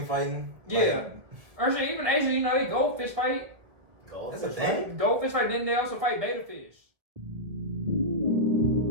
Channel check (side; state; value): left; late; 2.0 ms